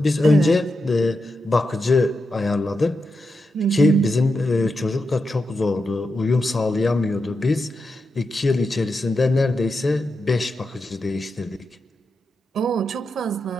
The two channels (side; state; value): both; normal; correlation 0.87